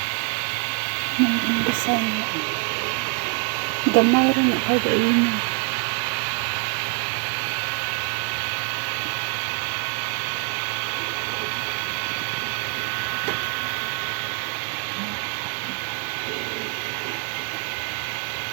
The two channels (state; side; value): quieter; left; 35.7 dB